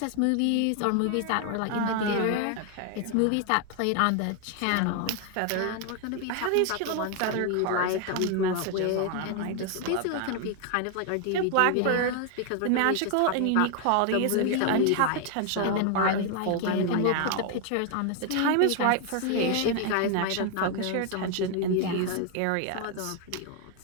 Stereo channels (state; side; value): different; both; correlation 0.00